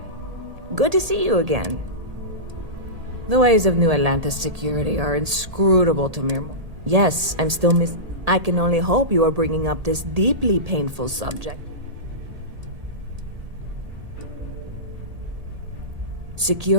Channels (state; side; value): late; left; 1.8 ms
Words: Good to see you again. The ways of New Atlantis security are inscrutable to mere... Yes, I'm still I can only hope you are bringing up this deeply painful subject.